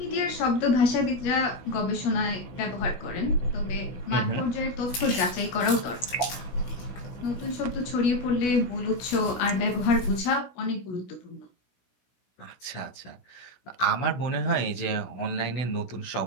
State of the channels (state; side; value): late; right; 16 ms